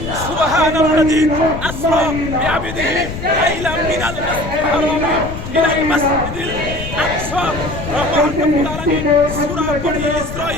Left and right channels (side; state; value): left; noise; rumble, 8 dB below the sound